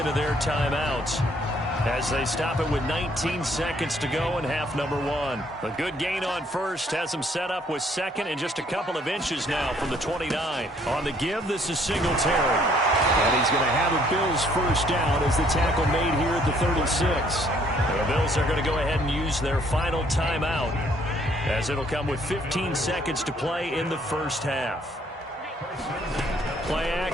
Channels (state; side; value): normal; both; correlation 0.64